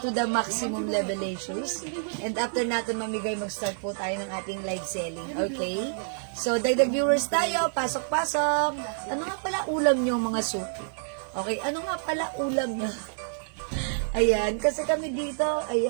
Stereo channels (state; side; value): silent; left; digital silence